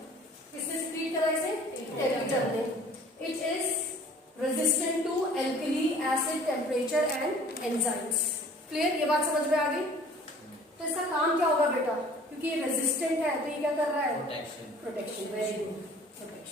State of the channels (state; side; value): normal; both; correlation 0.50